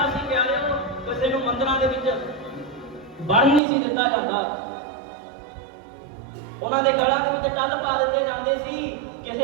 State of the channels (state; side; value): drops out; left; at 3.6 s